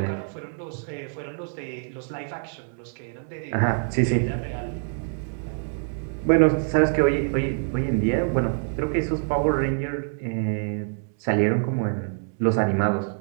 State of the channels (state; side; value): silent; left; 57 dB below the other